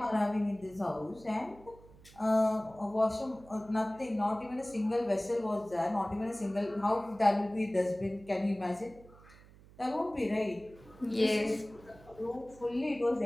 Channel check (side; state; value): right; noise; hum, 23 dB below the sound